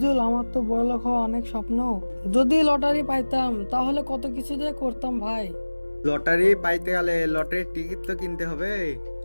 আমার তো বড়লোক হওয়া অনেক স্বপ্ন। যদি লটারি পাইতাম তাহলে কত কিছু যে করতাম ভাই। লটারি পাইতে গেলে লটারির টিকিট তো কিনতে হবে।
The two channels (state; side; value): inverted; both; correlation -1.00